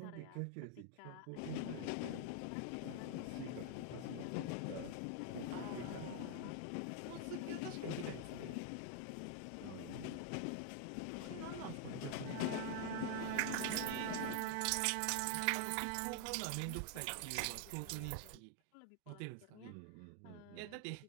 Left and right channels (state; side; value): different; both; correlation 0.00